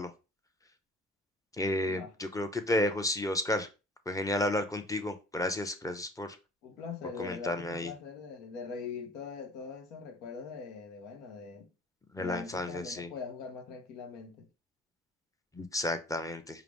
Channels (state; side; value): normal; both; correlation 0.48